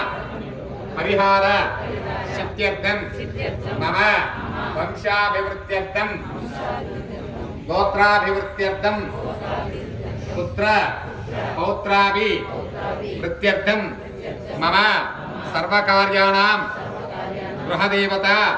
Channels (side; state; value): both; identical; correlation 1.00